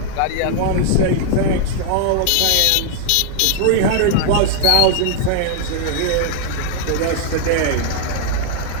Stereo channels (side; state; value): both; different; correlation -0.01